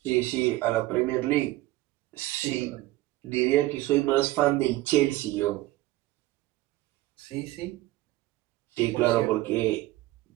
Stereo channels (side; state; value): left; quieter; 17.4 dB